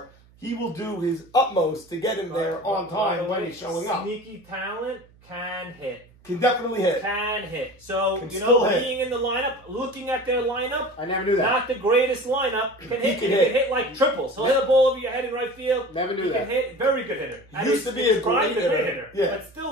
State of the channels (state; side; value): noise; right; hum, 28 dB below the sound